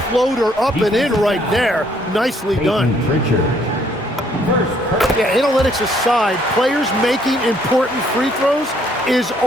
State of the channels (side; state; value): both; normal; correlation 0.66